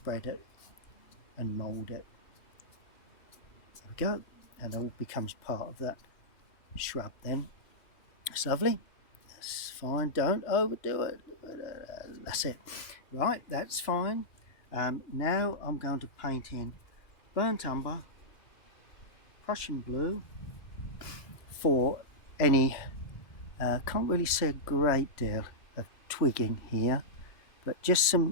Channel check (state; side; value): late; right; 3.0 ms